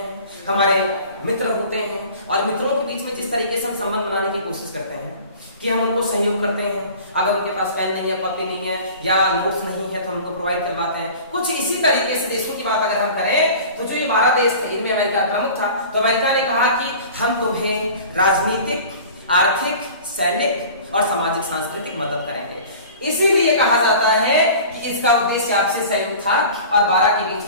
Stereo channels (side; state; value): both; inverted; correlation -0.42